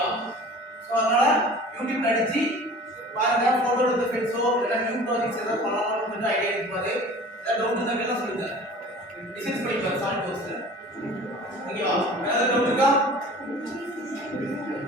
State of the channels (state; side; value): normal; both; correlation 0.43